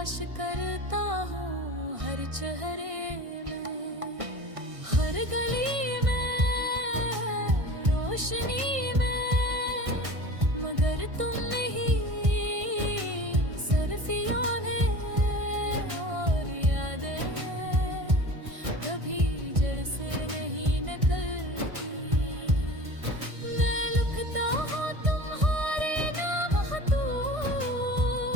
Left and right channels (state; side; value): late; left; 1.6 ms